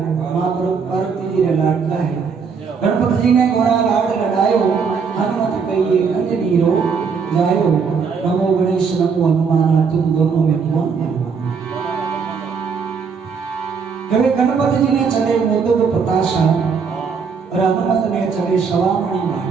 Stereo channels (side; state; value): left; quieter; 5.8 dB